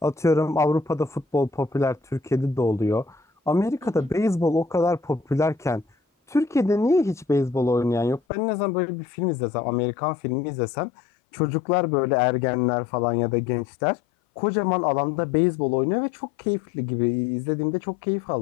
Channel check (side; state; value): right; drops out; at 8.2 s